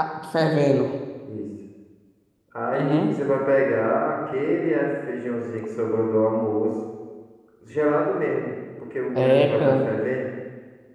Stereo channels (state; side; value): identical; both; correlation 1.00